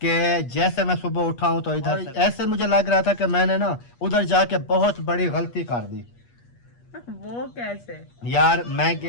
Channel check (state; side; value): late; right; 8.4 ms